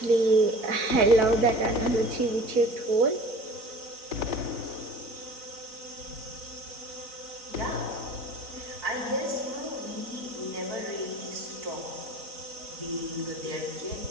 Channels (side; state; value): left; late; 4.0 ms